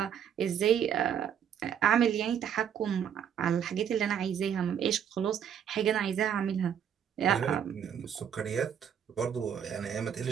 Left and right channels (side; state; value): left; quieter; 8.6 dB